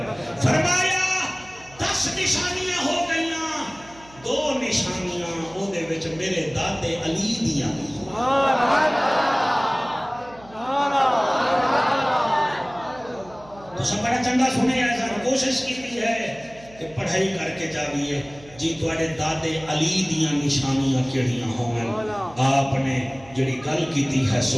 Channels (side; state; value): right; noise; hum, 23 dB below the sound